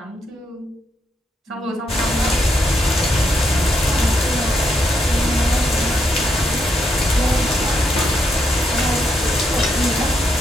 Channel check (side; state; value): both; normal; correlation 0.79